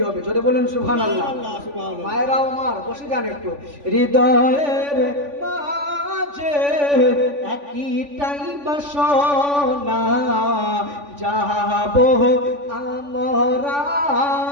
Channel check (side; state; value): left; late; 3.5 ms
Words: হবে, যদি বলেন সুবহানাল্লাহ। মায়েরাও আমার বসে যান একটু। হৃদয়ের মাঝে একটাই বাসনা, যাবো আমরা